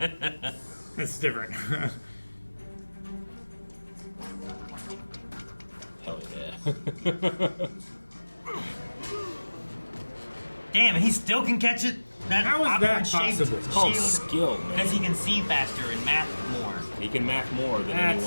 That's different. Hell yeah. Damn, and he still can catch it? That How is that awkward shape possible? It's called shield. skill, man. Because he can see faster and math more. He can math more than That's-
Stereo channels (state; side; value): inverted; both; correlation -1.00